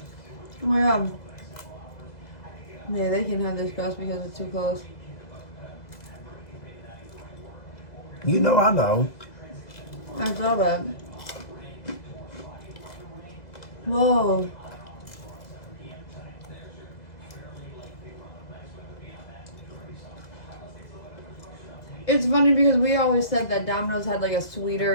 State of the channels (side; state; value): right; late; 2.0 ms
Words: Oh my god. Yeah, they can have this crust because it's too close. You know, I know. I saw that. Whoa. It's funny because we always said that Domino's had like a